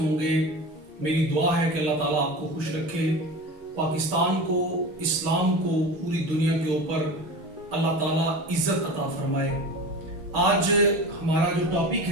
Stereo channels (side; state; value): left; late; 6.3 ms